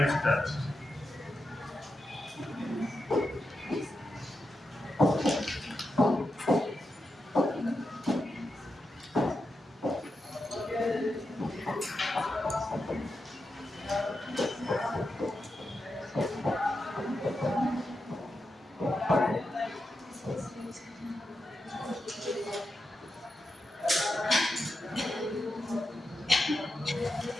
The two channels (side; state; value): both; normal; correlation 0.88